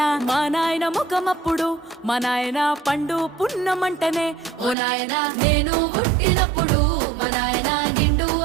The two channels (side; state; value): left; drops out; at 4.8 s